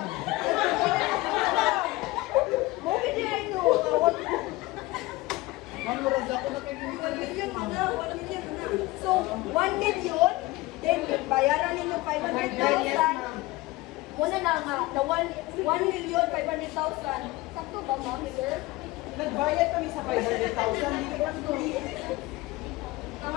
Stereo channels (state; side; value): quieter; right; 20.3 dB